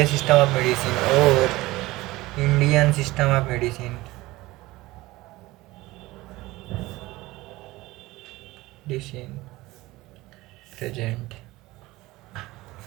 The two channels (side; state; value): left; quieter; 19.3 dB